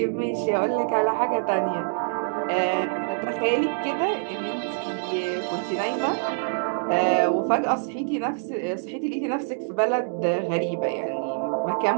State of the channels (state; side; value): silent; left; digital silence